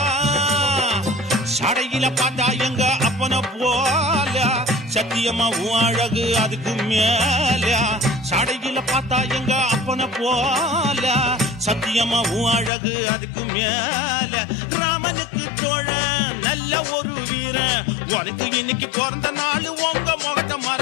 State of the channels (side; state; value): right; drops out; at 12.7 s